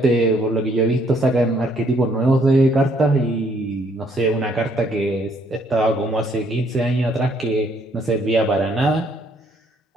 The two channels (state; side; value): normal; both; correlation 0.67